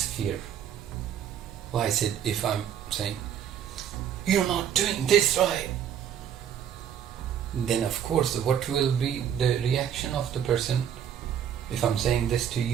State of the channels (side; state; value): left; quieter; 9.2 dB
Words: Why I said, if I'm saying, you're not doing this right, then of course what will be the reaction of the person? If I'm saying this to